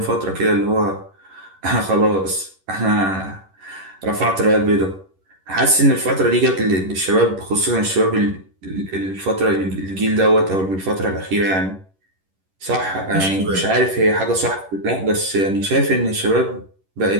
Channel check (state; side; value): late; left; 11 ms